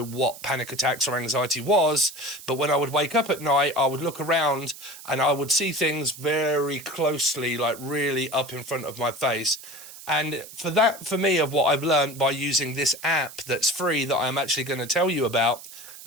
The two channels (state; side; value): noise; right; hiss, 16 dB below the sound